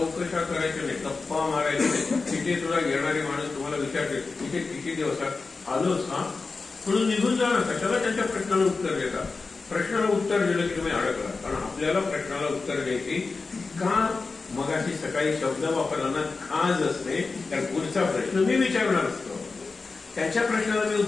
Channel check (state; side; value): quieter; right; 4.1 dB